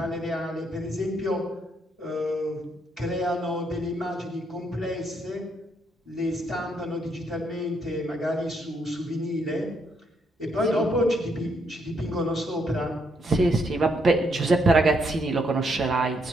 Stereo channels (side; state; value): both; normal; correlation 0.74